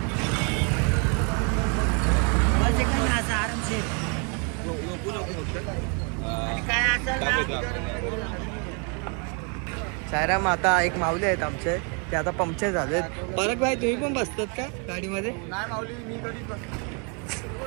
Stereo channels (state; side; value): quieter; left; 36.1 dB